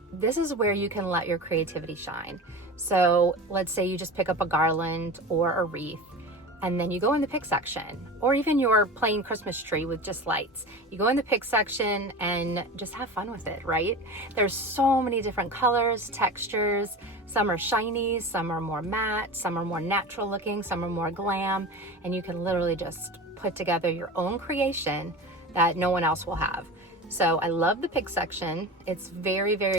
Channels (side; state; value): both; normal; correlation 0.31